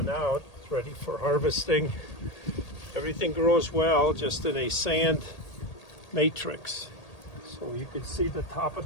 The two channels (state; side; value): late; right; 1.8 ms